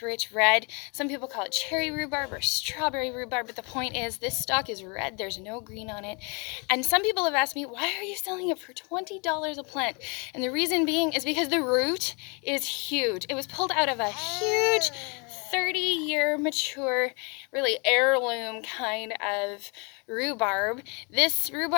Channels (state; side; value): quieter; right; 32.7 dB